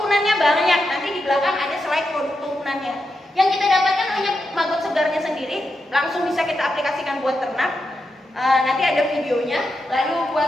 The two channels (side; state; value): both; normal; correlation 0.86